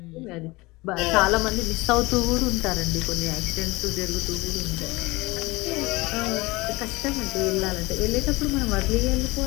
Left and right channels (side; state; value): right; quieter; 22.5 dB